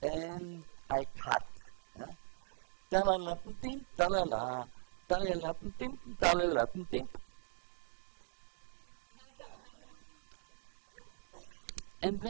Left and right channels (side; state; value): left; silent; digital silence